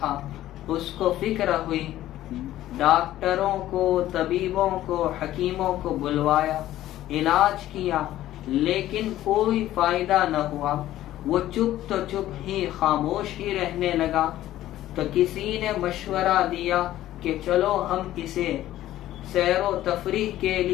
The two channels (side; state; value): right; quieter; 14.0 dB